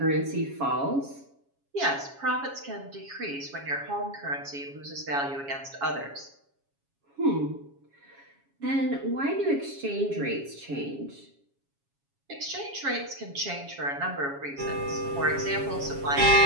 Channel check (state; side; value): late; left; 7.2 ms